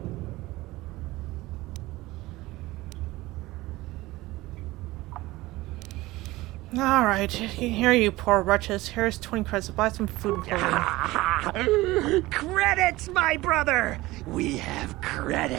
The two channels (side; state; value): left; quieter; 19.1 dB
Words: Alright, here you poor wretches. Here's 20 credits to buy some food and clothing. Credits, my brother! We have